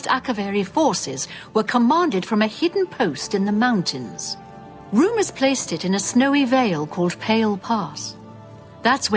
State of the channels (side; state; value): both; identical; correlation 1.00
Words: Akaviri forces were commanded from a hidden post in the mountains. Rumors placed it in a snowy vale called Pale Pass. That's